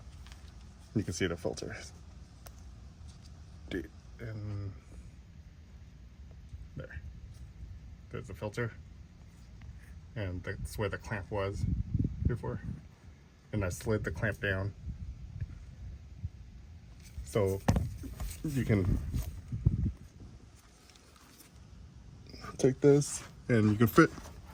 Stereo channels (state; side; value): identical; both; correlation 1.00